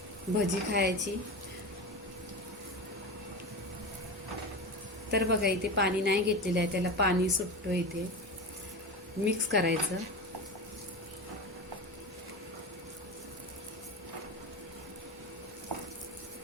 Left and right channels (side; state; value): both; normal; correlation 0.24